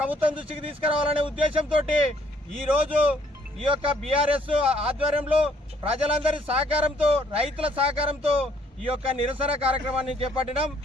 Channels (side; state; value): both; normal; correlation 0.64